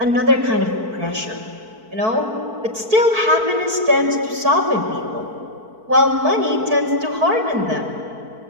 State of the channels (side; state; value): left; late; 4.5 ms